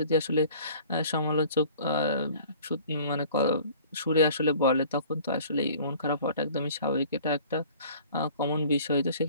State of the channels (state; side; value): inverted; both; correlation -0.49